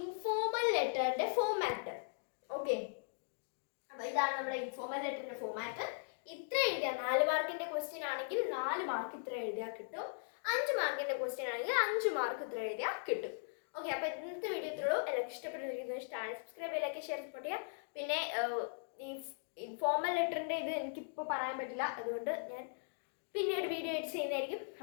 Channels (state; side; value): silent; right; digital silence